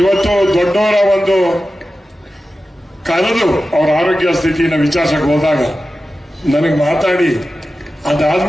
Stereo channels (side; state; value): both; normal; correlation 0.93